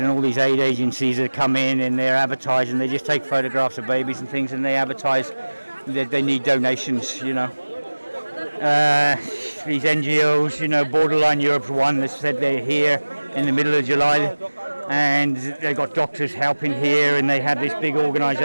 all these aid agencies that come in and they're advertising, they just take photographs of babies and things and they advertise that they need donations, you know. These NGOs, you know, Borderline Europe's one that said they're here in the middle of July and they've got doctors helping here and they have this big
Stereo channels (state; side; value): inverted; both; correlation -1.00